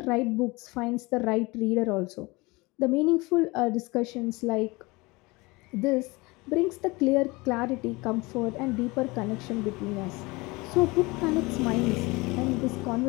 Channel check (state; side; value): quieter; right; 24.0 dB